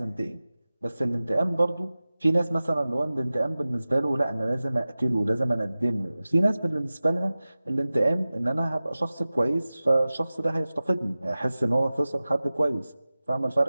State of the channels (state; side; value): inverted; both; correlation -0.96